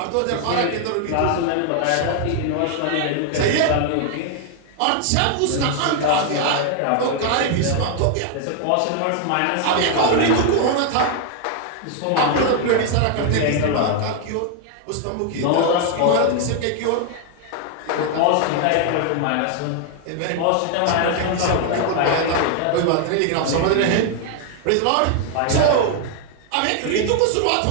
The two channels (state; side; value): different; both; correlation 0.00